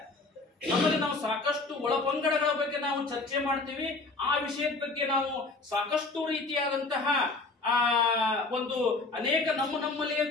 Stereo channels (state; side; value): quieter; right; 3.5 dB